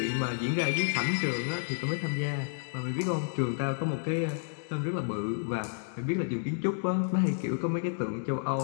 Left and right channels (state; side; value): silent; right; digital silence